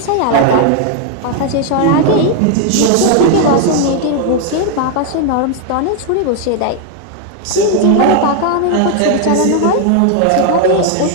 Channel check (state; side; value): different; both; correlation 0.00